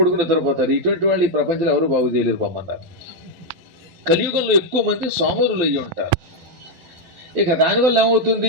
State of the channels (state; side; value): late; left; 12 ms